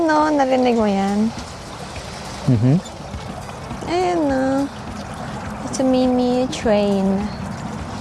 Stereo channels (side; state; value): both; identical; correlation 1.00